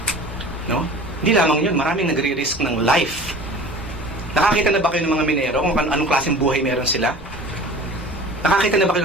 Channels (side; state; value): both; normal; correlation 0.41